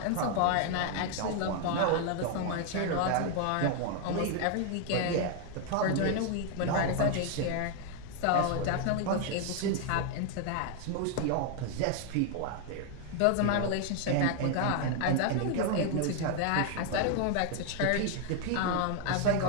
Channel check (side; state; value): both; different; correlation 0.00